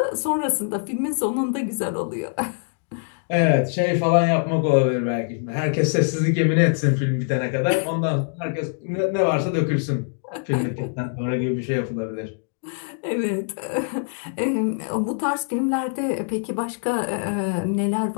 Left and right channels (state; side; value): silent; right; digital silence